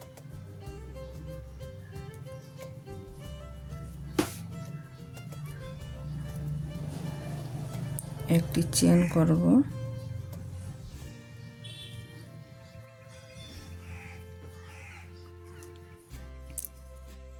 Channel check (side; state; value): both; identical; correlation 1.00